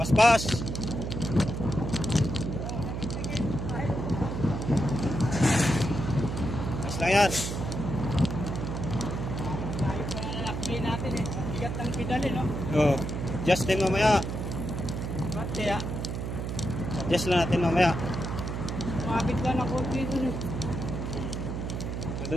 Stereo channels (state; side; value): noise; right; hum, 4 dB below the sound